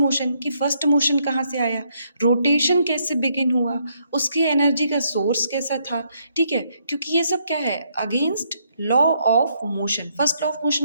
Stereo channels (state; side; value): inverted; both; correlation -0.73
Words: कि फर्स्ट मोशन कहाँ से आया, रोटेशन कैसे बिगिन हुआ, उसकी एनर्जी का सोर्स कैसा था, ठीक है। क्योंकि ये सब क्या है, against law of motion. First law of